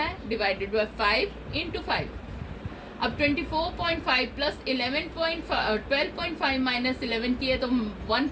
डिवाइडेड बाय 5 इंटू 5। अब 24.5 प्लस 12.5 माइनस 11 किए तो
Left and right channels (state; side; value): identical; both; correlation 1.00